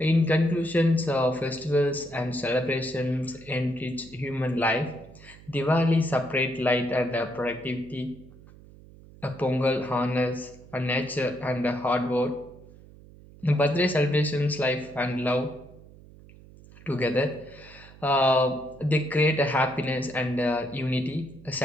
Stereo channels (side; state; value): right; noise; hum, 21 dB below the sound